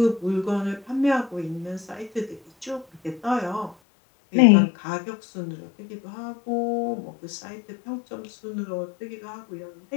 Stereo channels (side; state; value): right; drops out; at 3.8 s